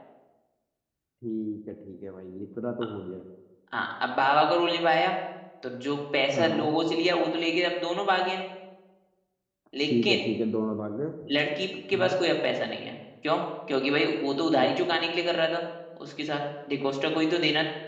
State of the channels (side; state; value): both; identical; correlation 1.00